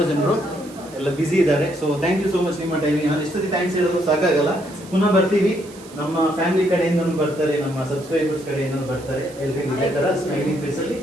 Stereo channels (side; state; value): right; noise; hiss, 21 dB below the sound